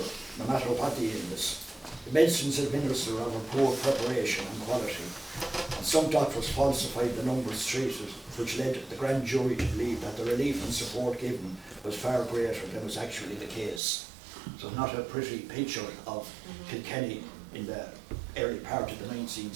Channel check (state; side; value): drops out; left; at 13.8 s